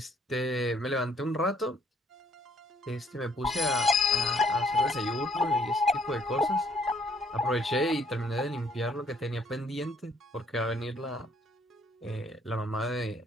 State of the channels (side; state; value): both; normal; correlation 0.65